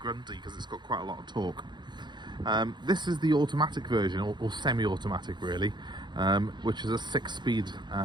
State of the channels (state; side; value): late; left; 0.21 ms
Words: because it's got quite a lot of torque. This is the automatic version, or semi-automatic really, which is a 6-speed